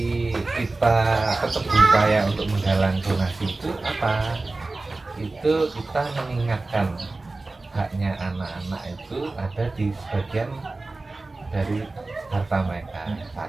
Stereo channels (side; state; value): left; quieter; 3.3 dB